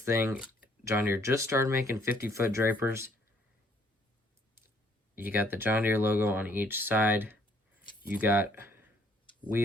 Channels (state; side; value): normal; both; correlation 0.64